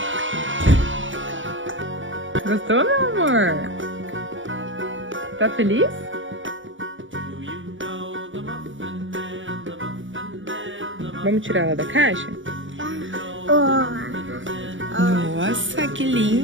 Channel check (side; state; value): left; late; 0.56 ms